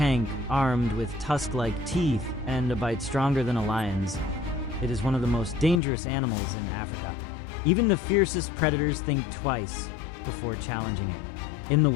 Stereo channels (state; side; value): drops out; right; at 5.8 s